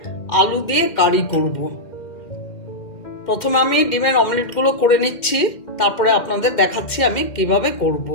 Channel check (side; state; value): right; late; 2.1 ms